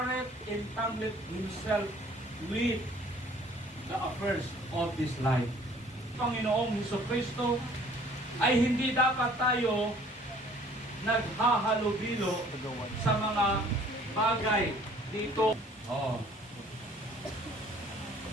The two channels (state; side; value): normal; both; correlation 0.55